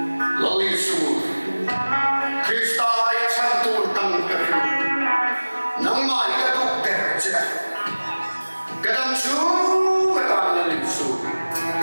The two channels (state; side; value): inverted; both; correlation -1.00